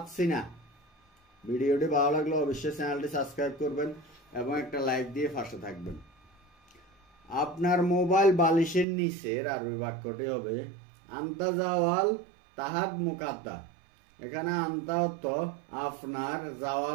না। ভিডিওটি ভালো লাগলে অবশ্যই চ্যানেলটি সাবস্ক্রাইব করবেন এবং একটা লাইক দিয়ে পাশে থাকবেন। আপনার মোবাইল বালিশের নিচের আরবি বাক্যটি হবে আন্তা জাওয়াল তাহাদ মুকাদ্দা। এখানে আন্তা অর্থ আপনার,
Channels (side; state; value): left; drops out; at 8.8 s